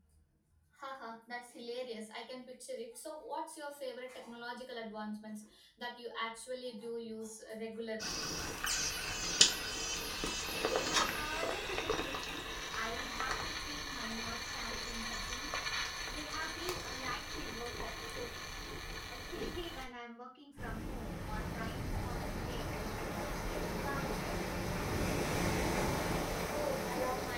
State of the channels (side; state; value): both; identical; correlation 1.00